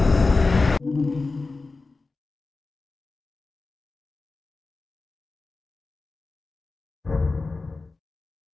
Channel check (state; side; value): quieter; right; 3.7 dB